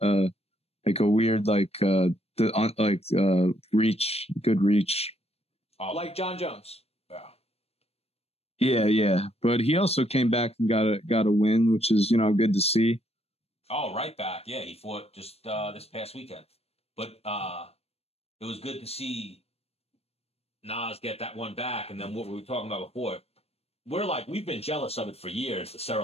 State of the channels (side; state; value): right; late; 0.29 ms